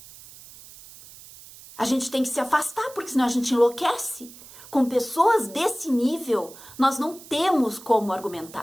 A gente tem que se afastar, porque senão a gente enlouquece. Com pessoas desse nível, nós não temos como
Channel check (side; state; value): right; noise; hiss, 19 dB below the sound